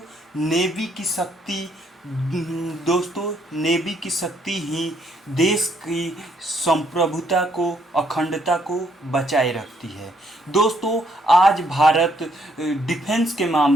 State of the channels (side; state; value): both; normal; correlation 0.70